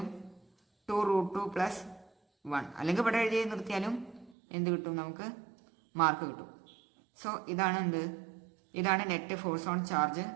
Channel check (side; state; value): left; drops out; at 4.4 s